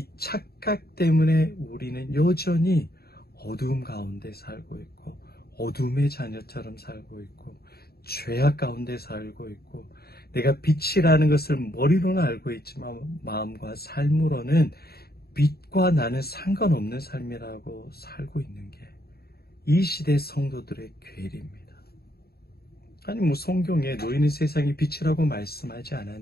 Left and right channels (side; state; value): right; late; 0.45 ms